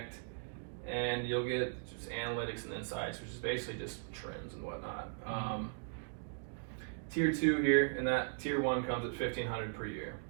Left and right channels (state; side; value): silent; left; digital silence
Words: and you'll get just analytics and insights, which is basically just trends and whatnot. Tier 2 here, and that Tier 1 comes at $1,500 per year.